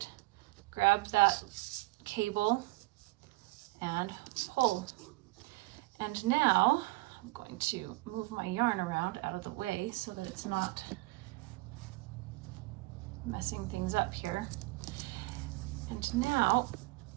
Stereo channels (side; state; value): left; quieter; 22.0 dB